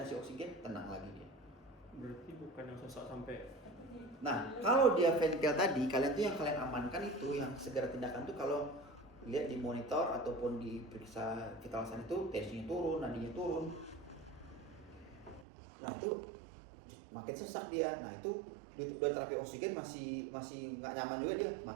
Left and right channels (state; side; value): drops out; left; at 15.5 s